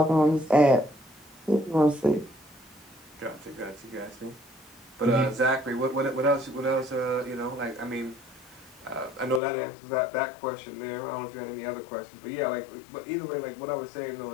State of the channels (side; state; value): right; drops out; at 9.4 s